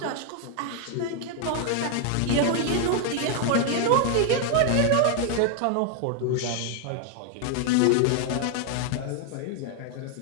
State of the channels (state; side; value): different; both; correlation 0.00